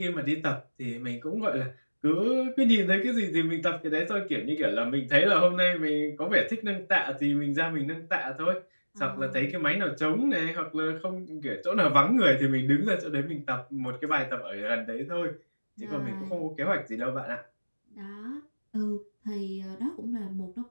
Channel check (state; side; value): inverted; both; correlation -1.00